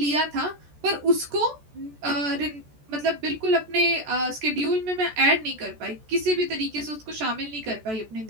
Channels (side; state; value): left; late; 14 ms